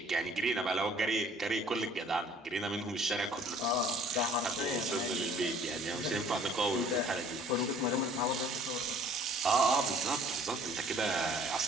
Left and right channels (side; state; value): both; normal; correlation 0.54